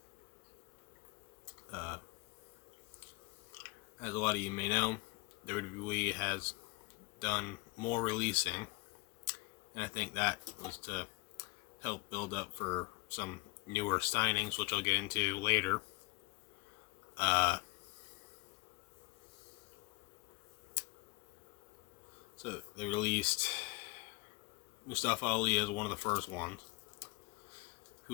As a lot of you may know, WWE has done more releasing, and I think that was to help build up for some newer signings, which I'll get into later. So they released Mustafa Ali as one of the first ones,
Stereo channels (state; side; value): quieter; right; 26.7 dB